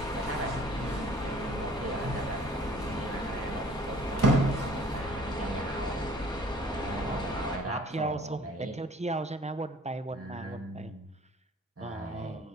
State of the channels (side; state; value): both; normal; correlation 0.53